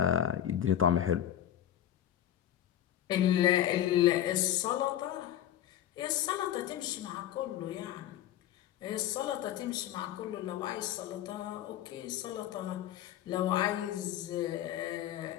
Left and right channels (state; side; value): quieter; right; 11.6 dB